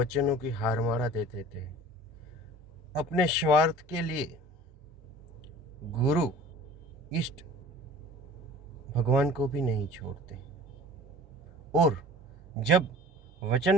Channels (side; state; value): both; normal; correlation 0.44